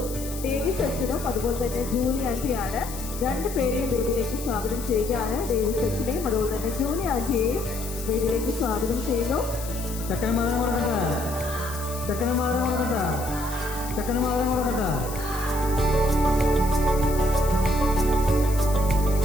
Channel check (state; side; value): noise; left; hiss, 12 dB below the sound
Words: ഡേവിസ് അച്ഛനും അതുപോലെ തന്നെ ജൂലി ആൻറ്റിയാണ്. രണ്ടുപേരെയും വീട്ടിലേക്ക് സ്വാഗതം ചെയ്യുകയാണ്. ഡേവിസ് അച്ഛനെയും അതുപോലെ തന്നെ ജൂലി ആൻറ്റിയെയും വീട്ടിലേക്ക് സ്വാഗതം ചെയ്യുന്നു.